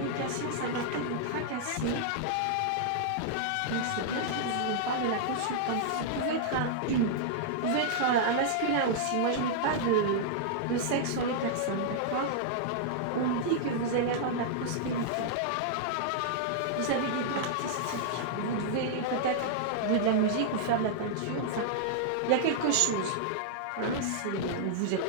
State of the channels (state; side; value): different; both; correlation -0.01